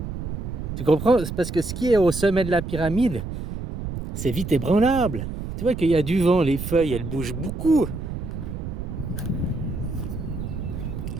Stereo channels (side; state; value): right; noise; rumble, 6 dB below the sound